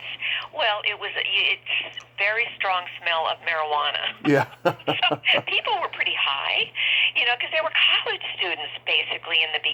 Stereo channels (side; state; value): both; identical; correlation 1.00